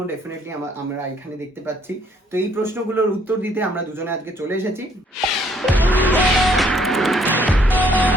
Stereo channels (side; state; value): both; normal; correlation 0.66